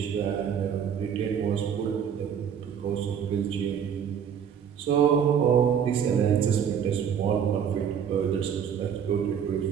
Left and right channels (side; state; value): left; quieter; 8.0 dB